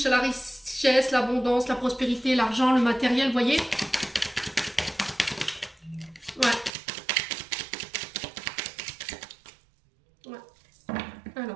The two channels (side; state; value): left; drops out; at 6.7 s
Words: à la richesse, l'abondance, la prospérité, l'argent, le matériel, vous voyez. Ouais. Ouais.